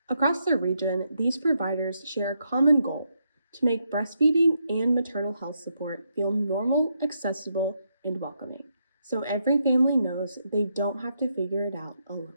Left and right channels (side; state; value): both; inverted; correlation -0.80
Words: Across the region, these providers share a common goal: to make breastfeeding and maternal health support feel normal, accessible, and welcoming, so every family knows they don't have to figure it out alone.